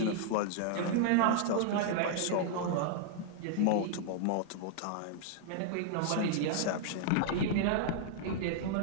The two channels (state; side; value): different; both; correlation -0.01